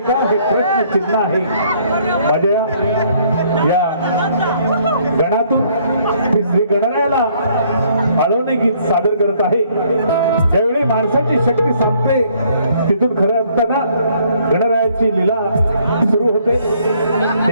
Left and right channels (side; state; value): both; inverted; correlation -0.64